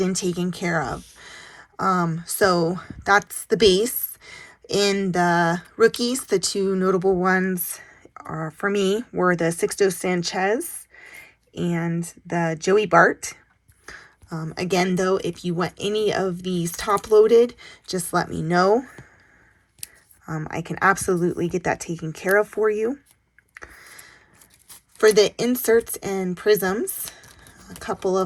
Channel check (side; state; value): both; identical; correlation 1.00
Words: and taken care of. So that's the base. In the rookies, the two notable ones are, for me, were the Sixto Sanchez and the Joey Bart. Again, though, if you want any of these top loaded, just let me know. I can absolutely get that taken care of for you. For the inserts and prisms, a couple